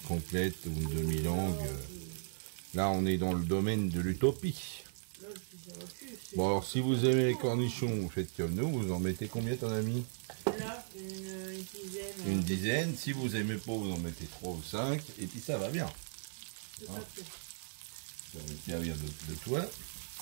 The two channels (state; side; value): silent; left; digital silence